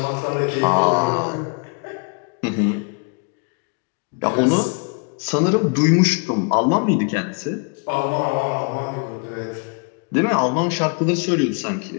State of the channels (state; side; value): quieter; right; 37.9 dB